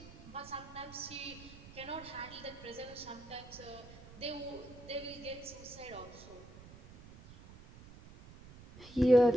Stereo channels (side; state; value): right; noise; rumble, 18 dB below the sound